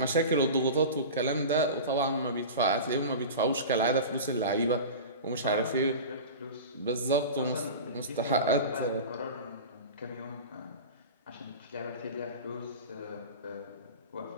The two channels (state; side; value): inverted; both; correlation -0.31